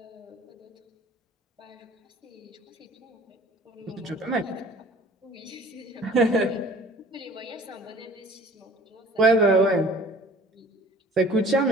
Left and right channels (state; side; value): normal; both; correlation 0.48